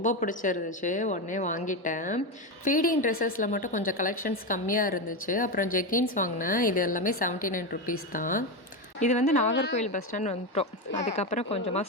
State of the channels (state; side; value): late; right; 1.1 ms